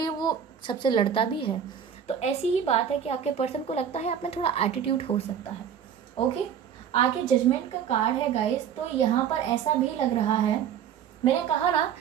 वो सबसे लड़ता भी है। तो ऐसी ही बात है कि आपके पर्सन को लगता है आप में थोड़ा एटीट्यूड हो सकता है, ओके। आगे जजमेंट का कार्ड है गाइस। तो यहाँ पर ऐसा भी लग रहा है, मैंने कहा ना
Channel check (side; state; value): left; quieter; 8.3 dB